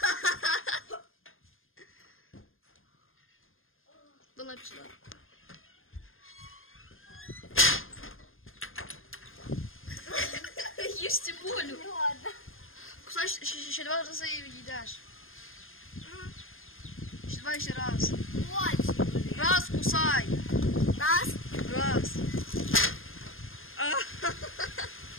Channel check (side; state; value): right; late; 0.60 ms